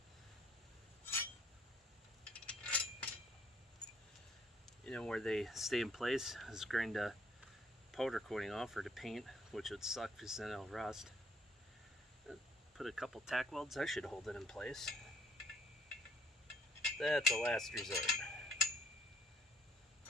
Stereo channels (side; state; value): both; normal; correlation 0.64